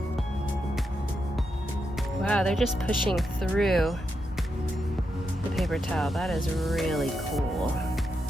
Wow, they're just pushing through the paper towel. That is really cool.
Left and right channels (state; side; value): normal; both; correlation 0.84